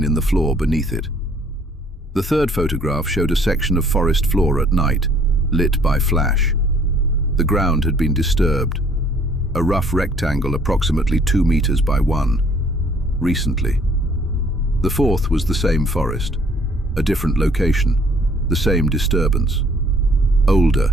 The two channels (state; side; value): normal; both; correlation 0.60